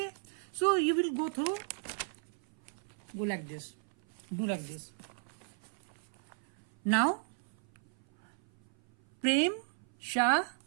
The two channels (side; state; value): left; silent; 54 dB below the other